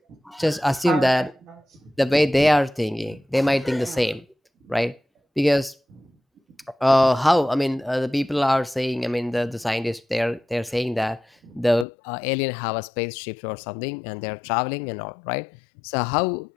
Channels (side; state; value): right; drops out; at 11.9 s